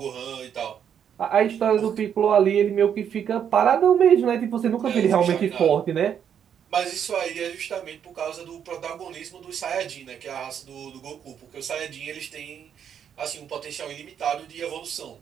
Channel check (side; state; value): left; quieter; 8.5 dB